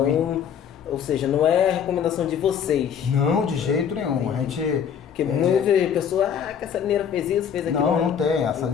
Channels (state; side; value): quieter; right; 8.0 dB